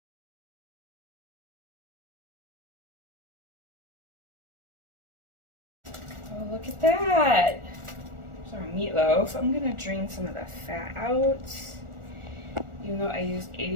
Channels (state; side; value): late; left; 1.4 ms